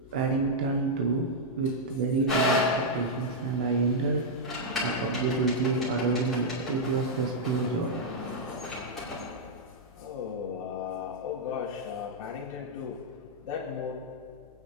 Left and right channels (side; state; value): left; noise; hum, 26 dB below the sound